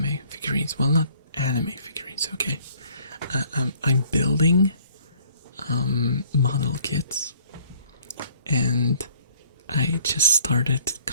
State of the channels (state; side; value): inverted; both; correlation -0.58